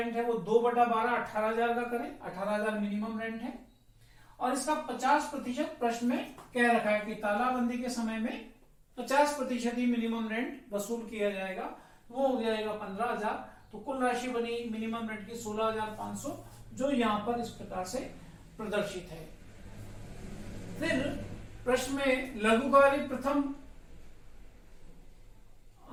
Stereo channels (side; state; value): both; identical; correlation 1.00